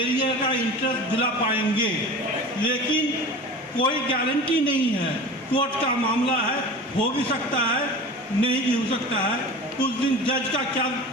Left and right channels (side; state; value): both; normal; correlation 0.35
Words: का इंटरेस्ट दिला पाएंगे, लेकिन कोई गारंटी नहीं है। कोर्ट का मामला है, हो भी सकता है, नहीं भी हो सकता है। उस दिन जज का क्या